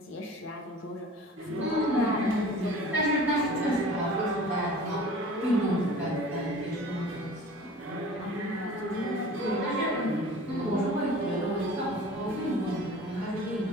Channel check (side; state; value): both; normal; correlation 0.43